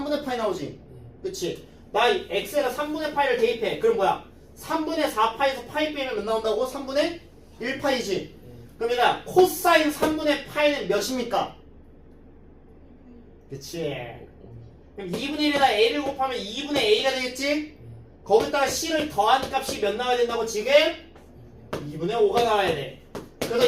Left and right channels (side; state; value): both; identical; correlation 1.00